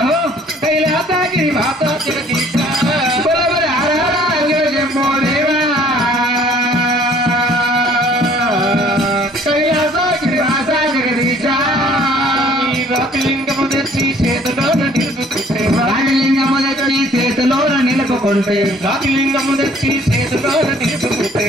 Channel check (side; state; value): both; normal; correlation 0.57